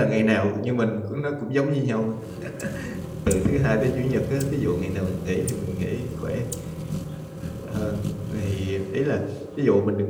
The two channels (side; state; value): both; identical; correlation 1.00